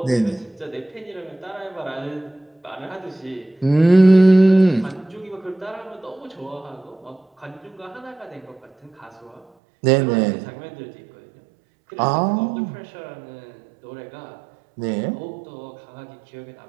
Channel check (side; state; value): left; drops out; at 9.5 s